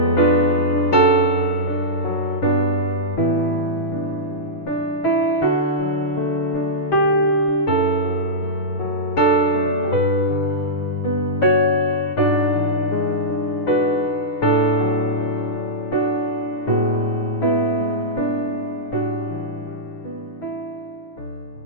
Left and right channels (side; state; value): right; late; 6.6 ms